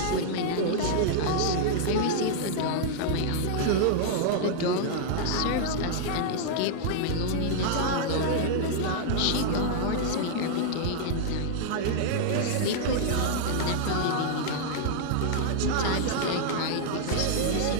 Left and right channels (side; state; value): both; different; correlation -0.01